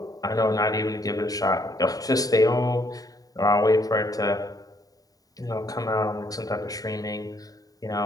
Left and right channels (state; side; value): late; right; 0.18 ms